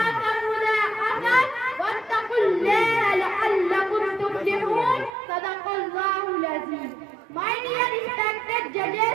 मुज़ाहफ़atan वत्तक़ुल्लाहा लअल्लकुम तुफ़्लिहून। सदक़ल्लाहुल अज़ीम। My dear respected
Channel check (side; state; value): left; drops out; at 5.1 s